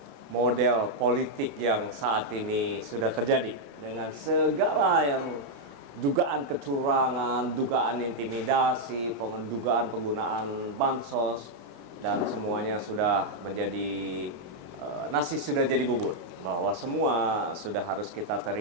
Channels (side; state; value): left; late; 29 ms